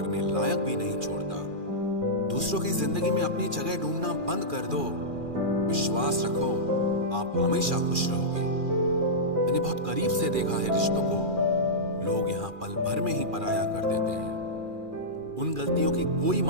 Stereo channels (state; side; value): late; left; 2.4 ms